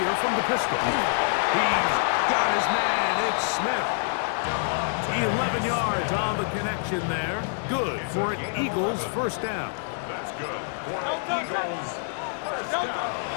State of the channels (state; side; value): silent; right; digital silence